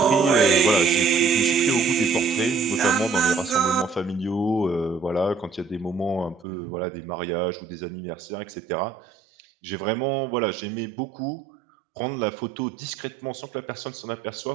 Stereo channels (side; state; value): left; drops out; at 6.5 s